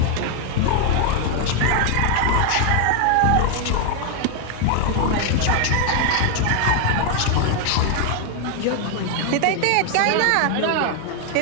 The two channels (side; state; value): both; different; correlation 0.00